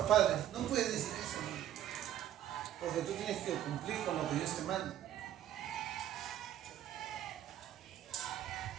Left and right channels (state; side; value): quieter; left; 11.6 dB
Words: padres. No puedes decir eso, ¿no? Porque tú tienes que cumplir con lo que Dios te manda.